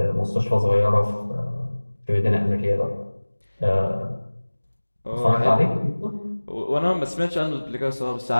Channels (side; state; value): both; inverted; correlation -1.00